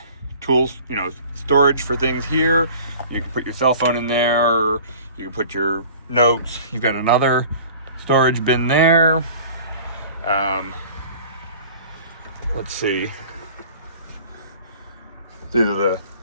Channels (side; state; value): both; inverted; correlation -0.46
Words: tools, you know, storage for things here. You can put your cell phone in there, or you can put your notes. You've got another storage bin there. Let's see. These are